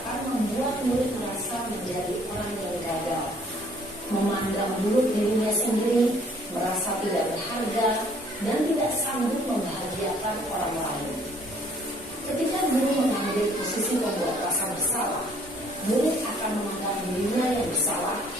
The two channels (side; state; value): both; normal; correlation 0.60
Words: membuat murid merasa menjadi orang yang gagal, memandang buruk dirinya sendiri, merasa tidak berharga, dan tidak sanggup membahagiakan orang lain. Ketika guru mengambil posisi pembuat rasa bersalah, murid akan memandang dirinya yang bersalah